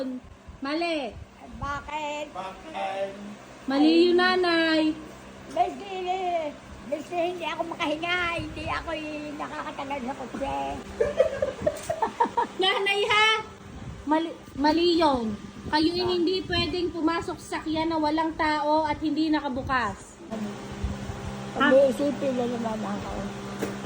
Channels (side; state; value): both; identical; correlation 1.00